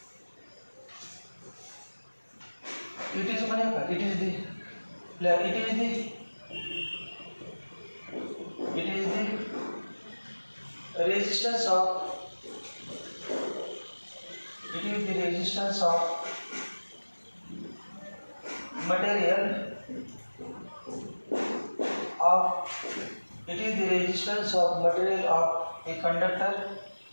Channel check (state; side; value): inverted; both; correlation -1.00